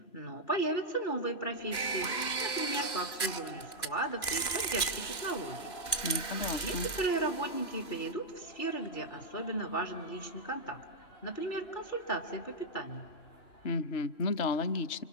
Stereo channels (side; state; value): right; late; 3.0 ms